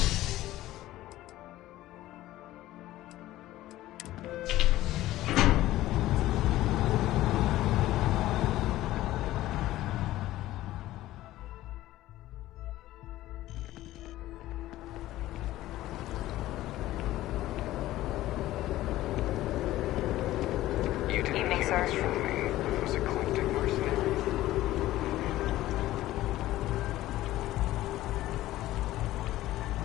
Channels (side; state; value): right; quieter; 15.5 dB